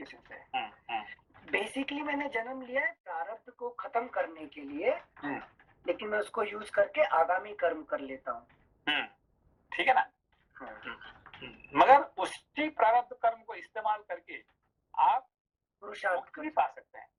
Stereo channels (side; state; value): both; identical; correlation 1.00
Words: sir. बेसिकली मैंने जन्म लिया है प्रारब्ध को खत्म करने के लिए, लेकिन मैं उसको यूज करके आगामी कर्म कर लेता हूँ, ठीक है ना। मगर उसी प्रारब्ध कर्म को इस्तेमाल करके आप पुरुषार्थ भी पा सकते हैं,